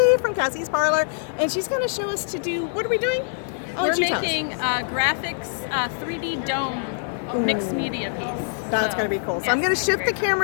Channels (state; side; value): silent; right; digital silence